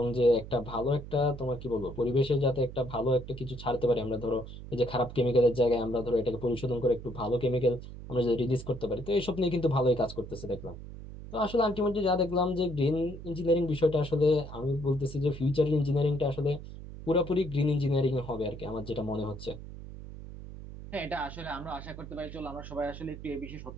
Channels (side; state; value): right; noise; hum, 12 dB below the sound